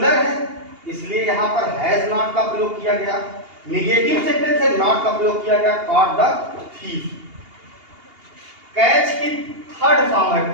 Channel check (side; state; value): left; late; 2.8 ms